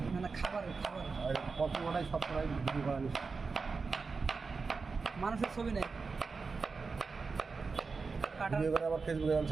মানে খাবার আর কত ওটাই সব করাই ভিডিও করা নিষেধ মানুষের ছবি নেই কাটার ভিডিও করে আবার ফেসবুকে আমি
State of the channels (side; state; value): left; quieter; 4.6 dB